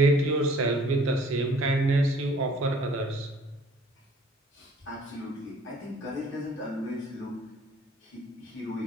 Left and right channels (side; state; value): both; normal; correlation 0.55